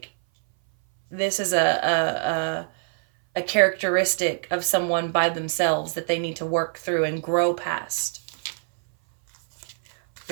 this is a characteristic of someone by themselves that they need to work through and grow past.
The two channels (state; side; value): silent; left; 60 dB below the other